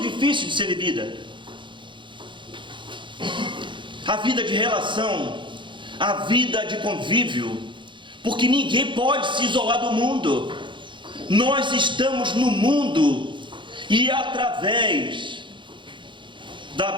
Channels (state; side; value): late; left; 0.23 ms